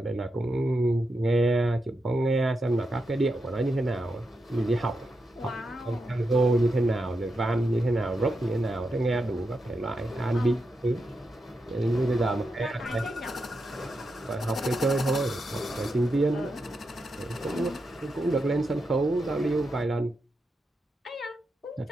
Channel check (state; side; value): normal; both; correlation 0.86